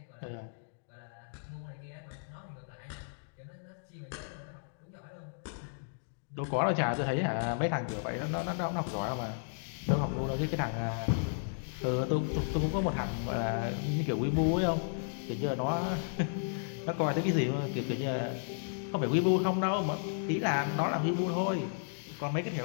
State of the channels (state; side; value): silent; right; digital silence